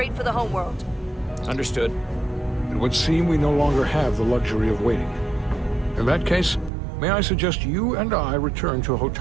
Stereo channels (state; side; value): drops out; left; at 6.7 s